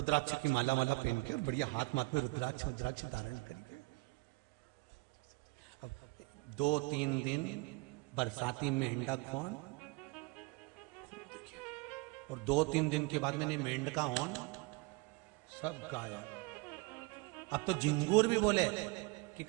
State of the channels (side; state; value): left; quieter; 26.4 dB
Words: की माला वाला पहन के और बढ़िया हाथ माथ में रुद्राक्ष धारण करके 2-3 दिन बरसाती मेंढक कौन, और 2-3 दिन के बाद मैंने मेंढका हॉर्न सब गाया। अब तो झिंगूर भी बोले कि